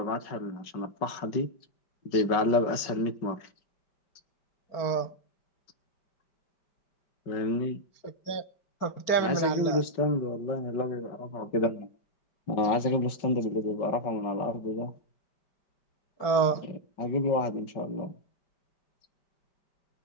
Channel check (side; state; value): right; late; 5.4 ms